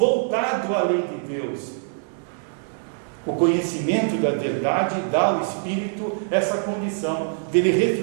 à lei de Deus. O conhecimento da verdade dá ao espírito essa condição dele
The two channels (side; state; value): left; silent; digital silence